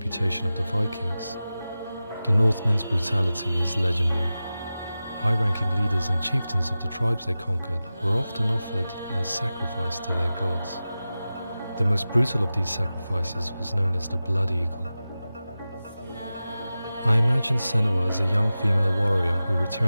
of the Vikings. The Northmen's brutality is legendary. High-ranking leaders and chieftains of the tribes they conquered were often offered as sacrifice to their gods. The most brutal of these sacrifices was known as the Blood Eagle. I imagine Senua as a young female warrior who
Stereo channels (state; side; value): inverted; both; correlation -0.95